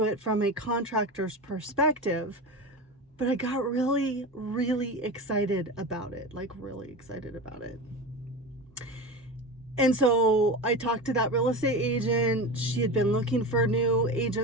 it from a contractor's perspective. But I got really, really excited about it, And so I talked to that real estate agent. She had been looking for new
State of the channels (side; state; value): both; normal; correlation 0.26